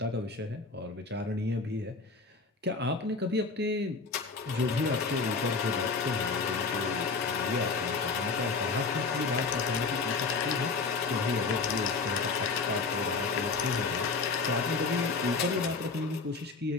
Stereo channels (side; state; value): right; quieter; 4.3 dB